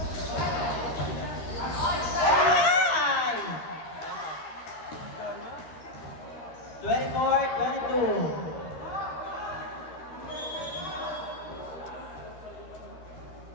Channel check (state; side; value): late; right; 13 ms